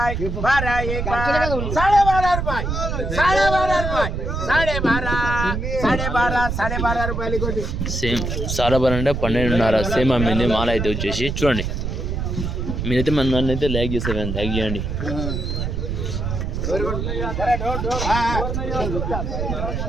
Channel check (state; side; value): noise; right; rumble, 3 dB below the sound